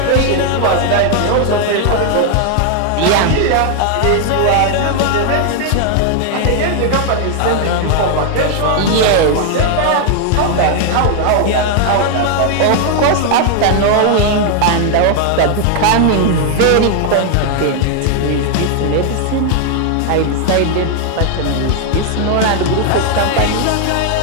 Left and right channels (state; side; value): different; both; correlation 0.00